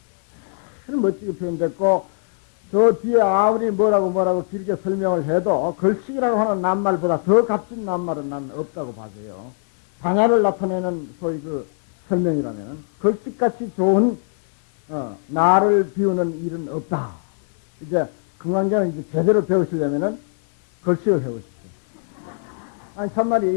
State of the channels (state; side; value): silent; right; 62 dB below the other